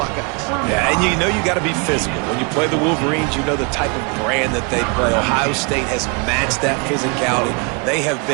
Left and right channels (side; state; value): left; quieter; 32.8 dB